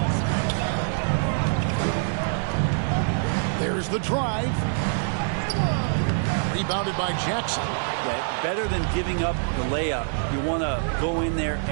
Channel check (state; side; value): silent; left; 62 dB below the other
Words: There's the drive. Rebounded by Jackson. Yeah, better than giving up the layup. You want to go in there